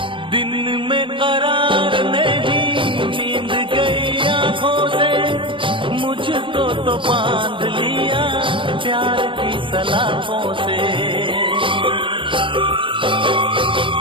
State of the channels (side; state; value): left; late; 0.25 ms